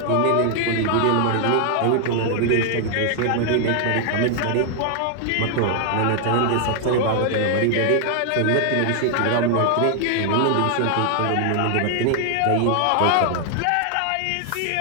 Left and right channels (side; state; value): both; different; correlation 0.00